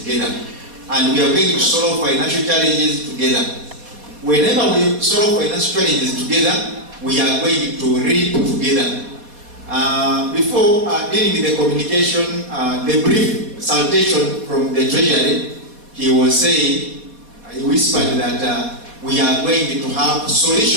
together. And we are going to solve financial challenges together. Whenever we solve financial challenges together, we are going to reap together. Before dealing with the communication, the brief salutation from the Treasury, he was saying, he whispered that we are going to have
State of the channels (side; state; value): left; late; 4.1 ms